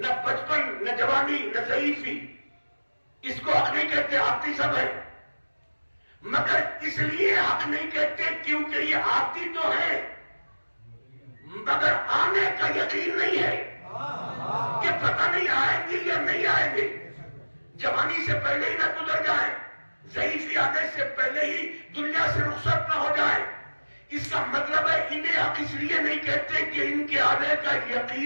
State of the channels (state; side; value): inverted; both; correlation -1.00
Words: بچپن، نہ جوانی، نہ ضعیفی، اس کو حق نہیں کہتے، آتی سب ہے، مگر اس لیے حق نہیں کہتے کیونکہ یہ آتی تو ہے مگر آنے کا یقین نہیں ہے کہ پتہ نہیں آئیں گے یا نہیں آئیں گے، جوانی سے پہلے ہی نہ گزر جائیں، ضعیفی آنے سے پہلے ہی دنیا سے رخصت نہ ہو جائے۔ اس کا مطلب ہے انہیں حق اس لیے نہیں کہتے کہ ان کے آنے کا